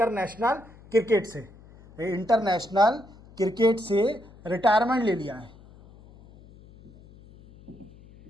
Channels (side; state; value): left; noise; hum, 23 dB below the sound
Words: क्रिकेट से। इंटरनेशनल क्रिकेट से रिटायरमेंट ले लिया है।